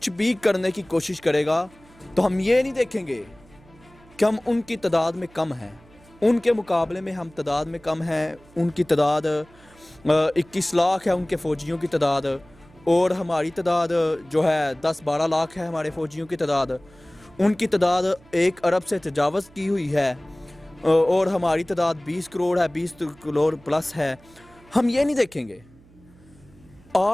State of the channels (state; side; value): noise; right; hum, 26 dB below the sound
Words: بھی کرنے کی کوشش کرے گا تو ہم یہ نہیں دیکھیں گے کہ ہم ان کی تعداد میں کم ہیں، ان کے مقابلے میں ہم تعداد میں کم ہیں۔ ان کی تعداد 21 لاکھ ہے، ان کے فوجیوں کی تعداد، اور ہماری تعداد جو ہے 10-12 لاکھ ہے ہمارے فوجیوں کی تعداد۔ ان کی تعداد 1 ارب سے تجاوز کی ہوئی ہے اور ہماری تعداد 20 کروڑ ہے، 20 کروڑ پلس ہے۔ ہم یہ نہیں دیکھیں گے۔